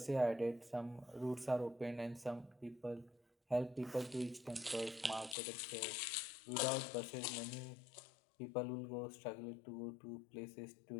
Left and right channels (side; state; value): right; drops out; at 5.4 s